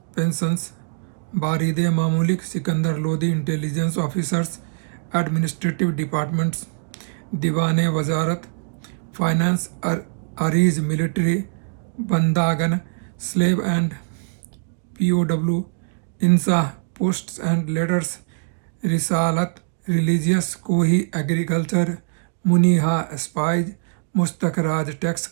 pensions. Baride Mamulik Sikandar Lodi intelligence officers administrative departments. Diwane Wazarat finance. Ariz military. Bandagan slave and POW. Insah posts and letters. Risalat religious. Kohi agriculture. Muniha spies. Mustaq Raj tax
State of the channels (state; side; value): silent; left; digital silence